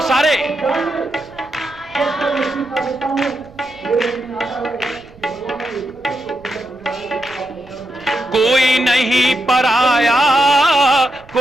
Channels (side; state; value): right; noise; rumble, 24 dB below the sound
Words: सारे, कोई नहीं पराया,